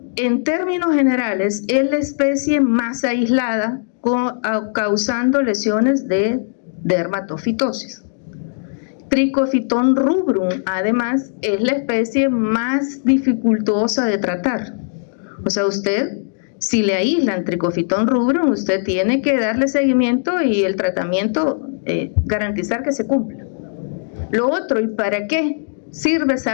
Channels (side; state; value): right; silent; digital silence